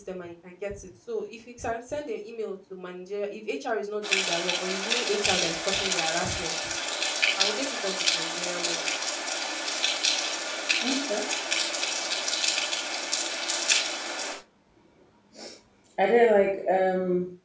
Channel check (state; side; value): identical; both; correlation 1.00